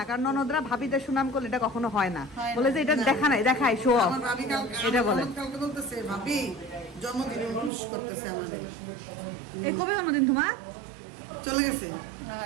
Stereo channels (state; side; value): drops out; left; at 7.7 s